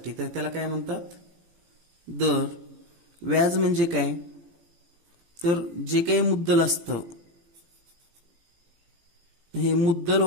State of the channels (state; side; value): late; left; 17 ms